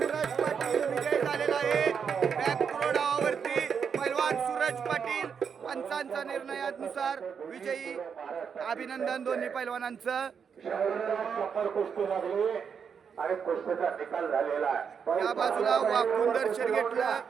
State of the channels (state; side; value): quieter; left; 6.7 dB